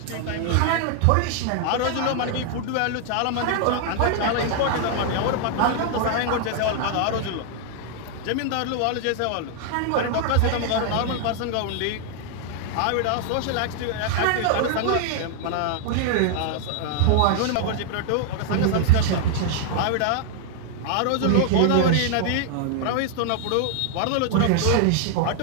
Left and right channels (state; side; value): different; both; correlation 0.00